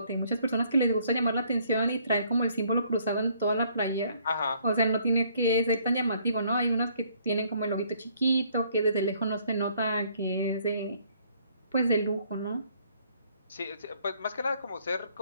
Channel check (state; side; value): inverted; both; correlation -0.64